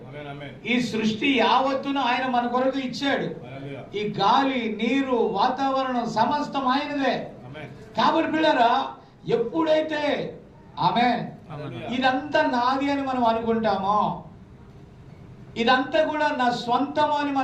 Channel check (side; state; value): both; identical; correlation 1.00